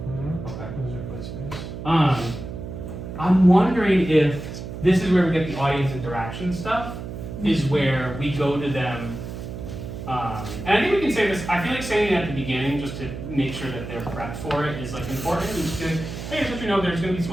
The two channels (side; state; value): right; noise; hum, 9 dB below the sound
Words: Okay. Those are placements. I'm wondering if this is where we get the audience interaction stuff, is where we go to them. And I think we can say this, I feel like saying it at the beginning just to make sure that they're prepped for it is like important. We just be like, hey, just let you know there's going to be